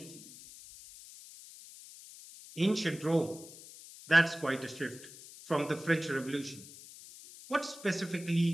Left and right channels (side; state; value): left; noise; hiss, 17 dB below the sound